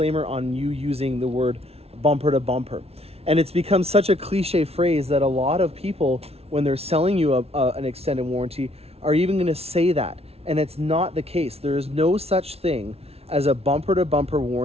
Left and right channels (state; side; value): late; left; 0.30 ms